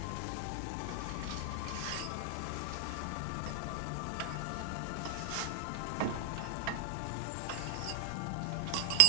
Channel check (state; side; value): different; both; correlation 0.00